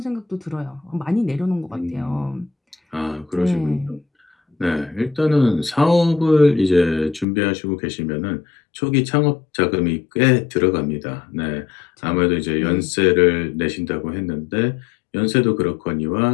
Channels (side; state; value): right; drops out; at 7.2 s